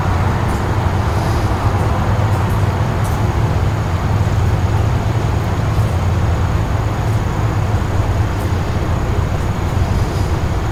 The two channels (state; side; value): identical; both; correlation 1.00